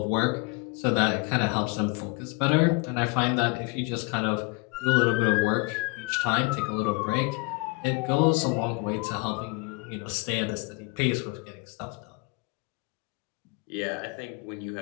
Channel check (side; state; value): right; quieter; 28.2 dB